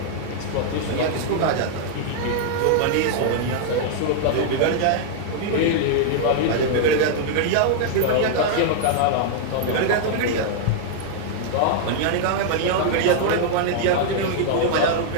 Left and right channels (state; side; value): different; both; correlation -0.01